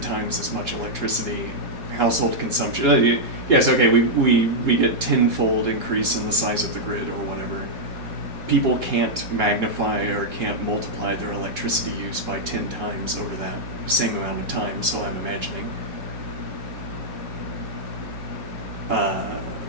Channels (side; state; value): left; late; 3.1 ms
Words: as much electricity. Household consumption, yes, okay, we get tenfold increase in the size of the grid or whatever. People can't magnify or can't multiply their electricity use by 10 times over that same amount of time, so I'm imagining.